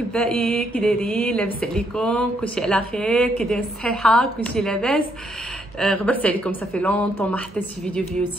كي دايرين؟ لاباس عليكم؟ كلشي على خير؟ كي داير الصحيحه؟ كلشي لاباس؟ غبرت عليكم صافي لونطون ما حطيتش فيديو في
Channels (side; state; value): both; normal; correlation 0.73